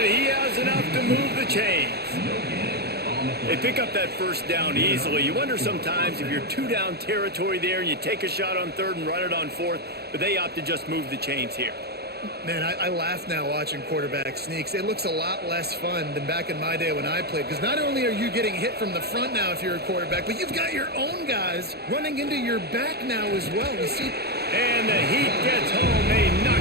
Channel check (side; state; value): left; late; 0.47 ms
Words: he has enough to move the chains. They pick up that first down easily. You wonder sometimes if you're two-down territory there and you take a shot on third and run it on fourth, but they opt to just move the chains here. Man, I laugh now watching quarterback sneaks. It looks a lot less fun than back in my day when I played, because not only are you getting hit from the front now if you're a quarterback, but you've got your own guys running into your back now as well. You see? And the Heat gets home. They knock